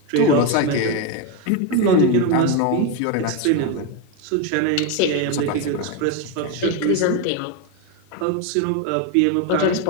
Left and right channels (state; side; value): different; both; correlation 0.03